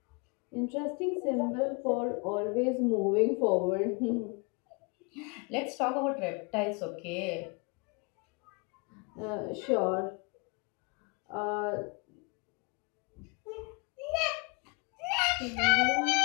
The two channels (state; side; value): quieter; right; 31.3 dB